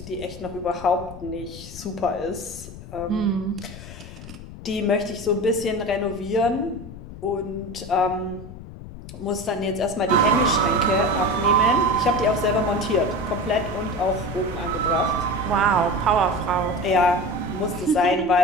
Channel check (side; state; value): left; noise; rumble, 14 dB below the sound